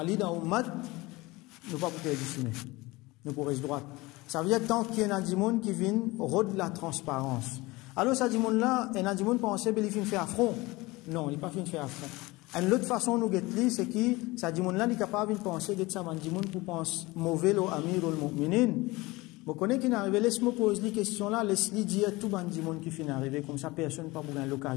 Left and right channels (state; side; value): quieter; right; 21.8 dB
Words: dans Ummat, nous pas pour dessiner. Nous pourrons droite. Ça veut dire tant qu'il y a des gens qui viennent rôde la transparence. Alors, ça dit là, il y a des gens qui pensent qu'il finit faire affront. Non, il n'est pas fini de faire affront. Une autre façon nous guetter, c'est que ça dit là, il est capable de penser que ça dit pour penser mauvais au amir ou le mu'minin. Vous connaissez qui n'arrive, laisse-moi poser les questions là, laisse-les dire tout le monde qui finit d'arriver, comme ça personne n'a pas